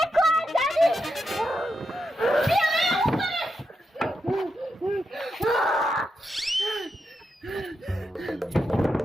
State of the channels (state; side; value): normal; both; correlation 0.85